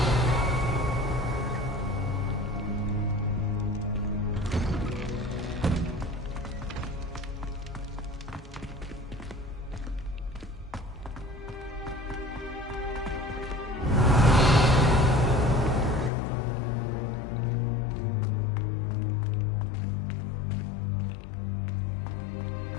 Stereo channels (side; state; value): right; drops out; at 16.1 s